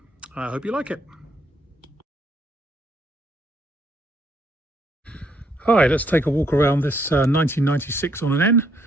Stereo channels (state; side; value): normal; both; correlation 0.70